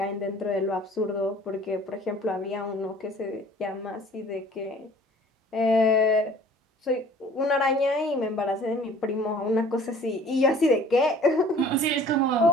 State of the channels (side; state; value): both; normal; correlation 0.50